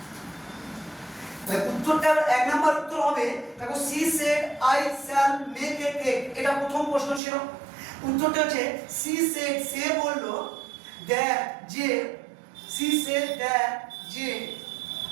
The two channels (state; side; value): drops out; left; at 7.2 s